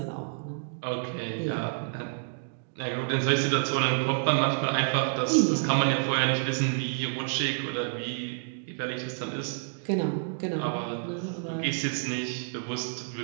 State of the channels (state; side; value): silent; left; digital silence